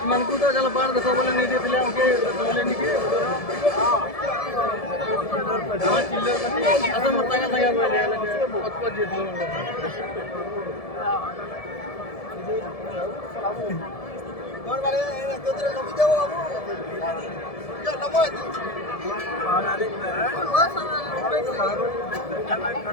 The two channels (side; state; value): right; late; 1.7 ms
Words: मन को तो चलो बाहर देखो बोले नहीं देते ले उनके बोले नहीं के हाँ चिल्लर बनी असम मत तंगा तंगा बोले ले बहुत बहुत जीत लो कौन वाले तो तेरे कभी जाओ अब जो नमो